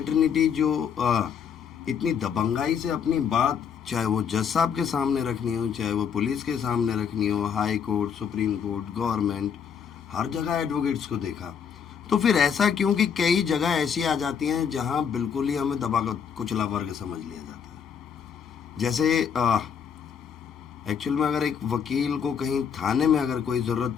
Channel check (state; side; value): quieter; right; 7.3 dB